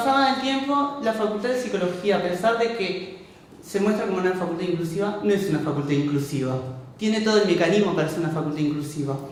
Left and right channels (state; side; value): identical; both; correlation 1.00